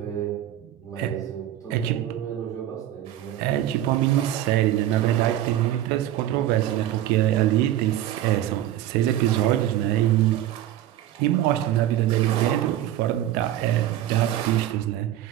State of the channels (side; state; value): left; quieter; 12.7 dB